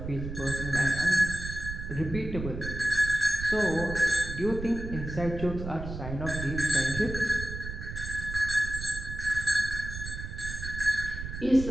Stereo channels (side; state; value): right; noise; rumble, 7 dB below the sound